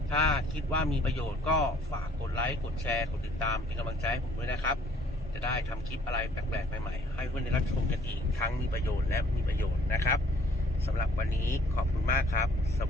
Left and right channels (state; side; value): normal; both; correlation 0.59